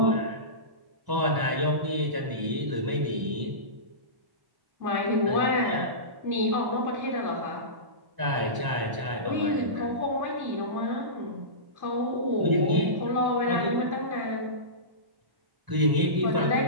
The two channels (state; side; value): late; left; 1.0 ms